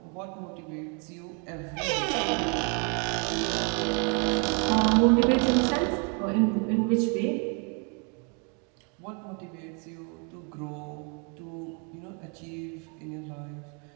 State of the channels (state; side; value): quieter; left; 36.6 dB